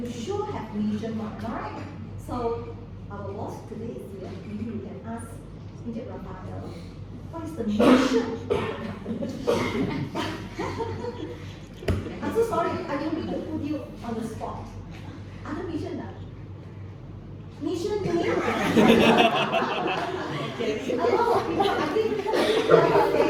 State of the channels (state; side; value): identical; both; correlation 1.00